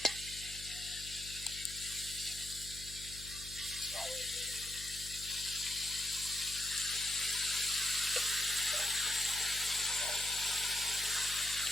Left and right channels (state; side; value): noise; left; hum, 14 dB below the sound